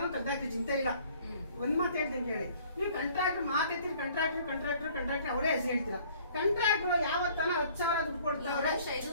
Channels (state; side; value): inverted; both; correlation -0.56